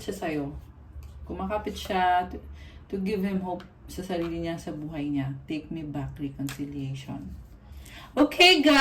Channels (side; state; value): both; identical; correlation 1.00